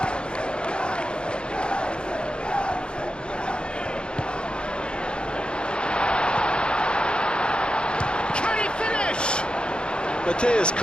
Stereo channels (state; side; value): late; right; 0.053 ms